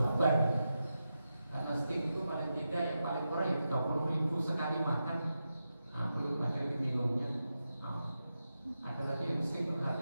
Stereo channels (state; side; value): inverted; both; correlation -0.89